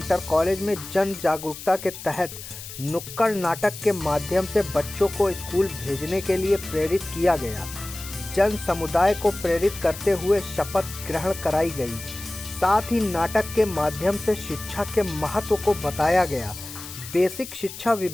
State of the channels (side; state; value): left; noise; hiss, 12 dB below the sound